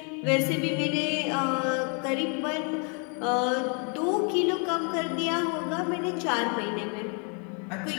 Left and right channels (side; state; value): right; quieter; 37.7 dB